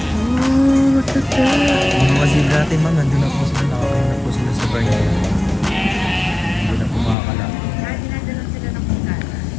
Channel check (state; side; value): drops out; right; at 7.2 s